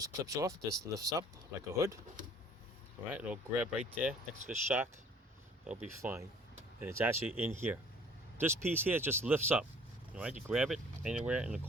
clips off, this lifts up like a hood. All right, it'll grab right there next to the shock. It'll be fine. And it's actually in here. This piece here just lifts up. All right, you grab it anywhere in the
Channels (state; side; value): normal; both; correlation 0.53